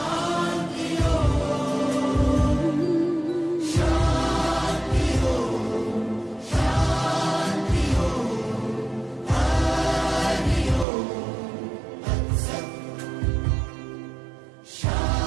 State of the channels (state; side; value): drops out; left; at 10.9 s